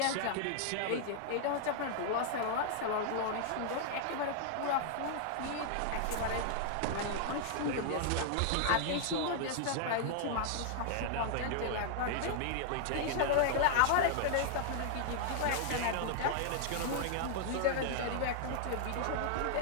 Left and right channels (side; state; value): both; different; correlation -0.01